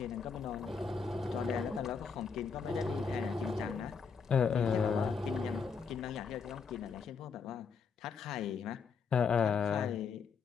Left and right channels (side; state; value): right; quieter; 5.7 dB